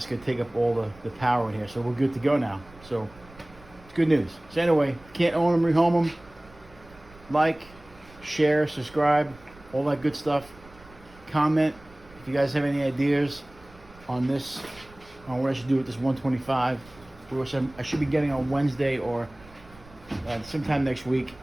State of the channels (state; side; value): noise; right; rumble, 23 dB below the sound